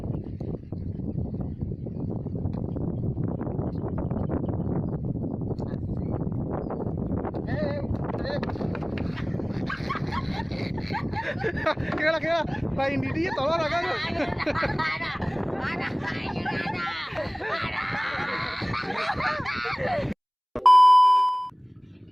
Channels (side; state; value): both; identical; correlation 1.00